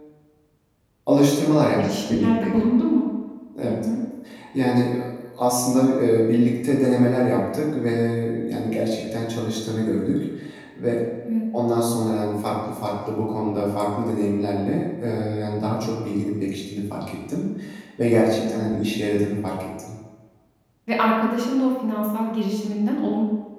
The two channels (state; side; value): identical; both; correlation 1.00